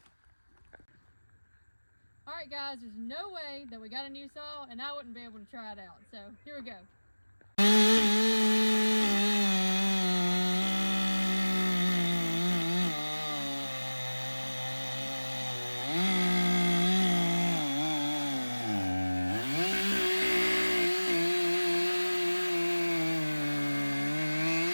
All right, guys, there's no way that we got a new saw and I wouldn't be able to try it out. So here we go.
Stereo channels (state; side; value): inverted; both; correlation -1.00